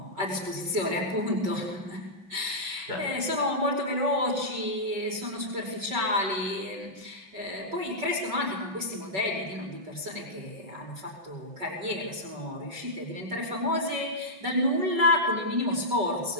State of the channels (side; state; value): left; late; 5.2 ms